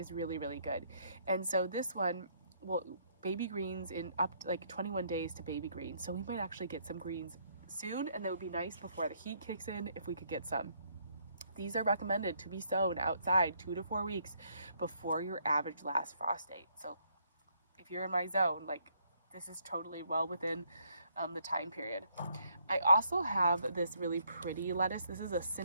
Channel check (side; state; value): both; inverted; correlation -0.69